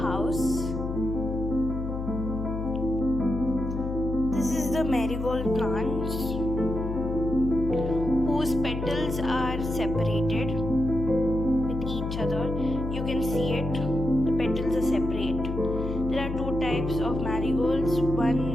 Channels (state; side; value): noise; left; hum, 5 dB below the sound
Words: This is the marigold plants whose petals are separated with each other. You can see it. The petals are separate. There are two types of marigolds.